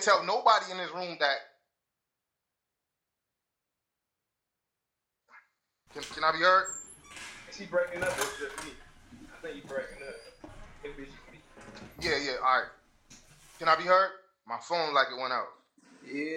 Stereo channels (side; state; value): both; identical; correlation 1.00